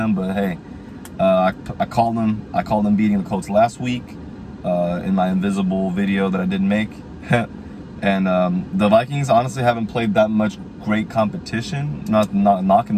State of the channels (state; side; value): identical; both; correlation 1.00